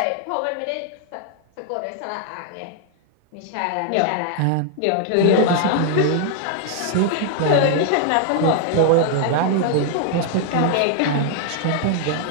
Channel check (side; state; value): both; different; correlation 0.00